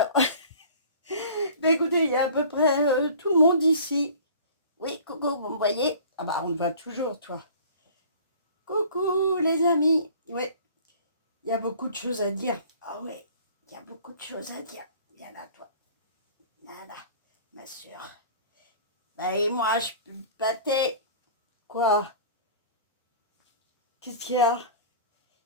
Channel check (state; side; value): inverted; both; correlation -0.45